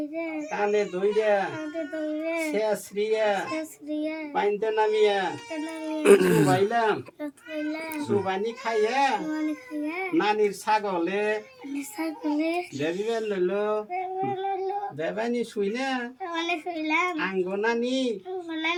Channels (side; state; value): both; identical; correlation 1.00